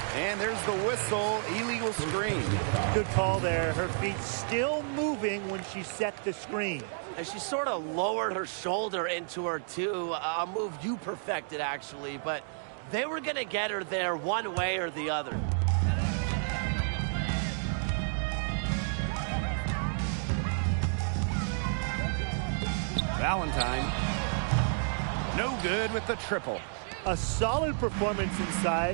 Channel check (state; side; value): silent; left; digital silence